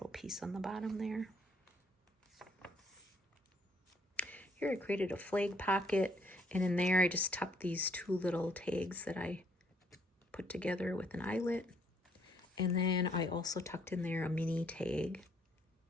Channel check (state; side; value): normal; both; correlation 0.67